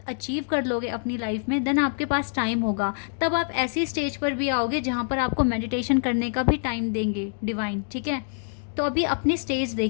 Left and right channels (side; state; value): right; silent; digital silence